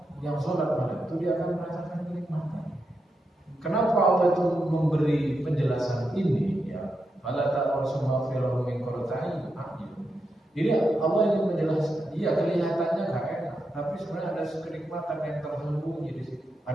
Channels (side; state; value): both; normal; correlation 0.86